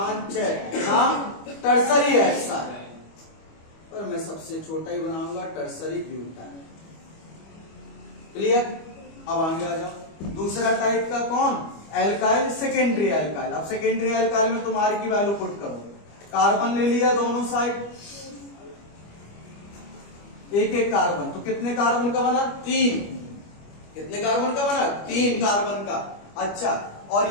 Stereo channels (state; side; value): late; right; 25 ms